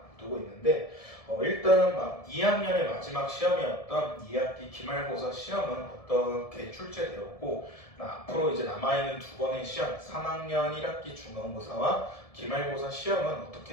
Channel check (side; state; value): right; late; 1.7 ms